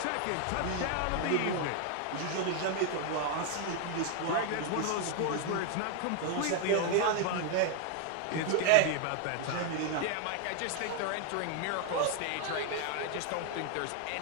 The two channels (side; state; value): both; different; correlation 0.00